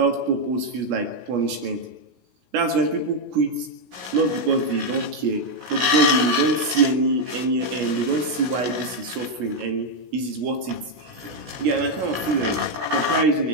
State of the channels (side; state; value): left; late; 16 ms